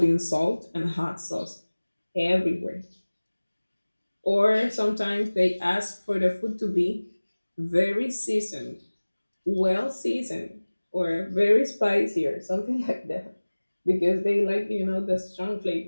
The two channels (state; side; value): inverted; both; correlation -1.00